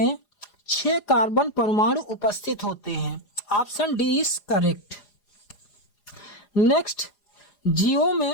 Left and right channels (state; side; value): late; right; 4.9 ms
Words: 6 कार्बन परमाणु उपस्थित होते हैं। Option D is correct. Next, जीवों